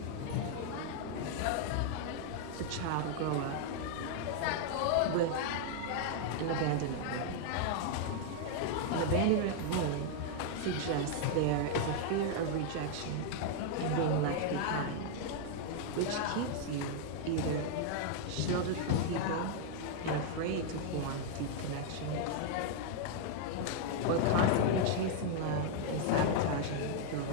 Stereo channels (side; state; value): both; different; correlation 0.00